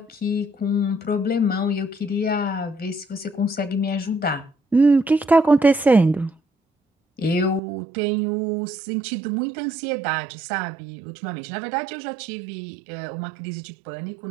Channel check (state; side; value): drops out; left; at 7.6 s